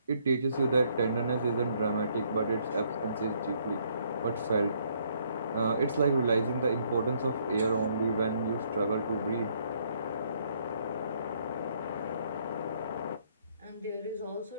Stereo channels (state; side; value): inverted; both; correlation -0.68